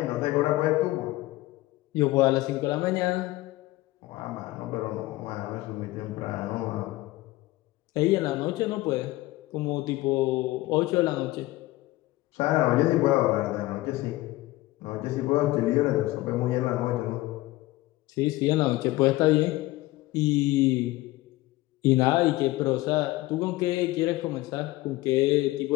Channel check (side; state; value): right; quieter; 18.6 dB